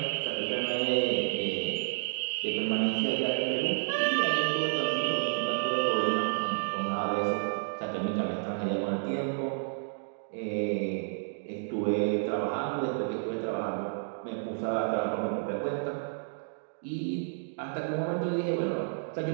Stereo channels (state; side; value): silent; left; digital silence